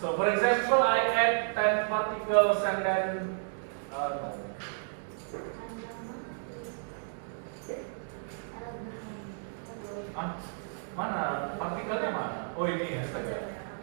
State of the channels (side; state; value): left; silent; digital silence